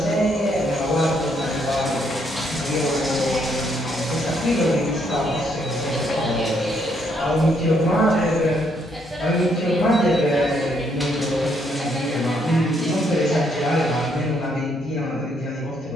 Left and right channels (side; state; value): both; normal; correlation 0.72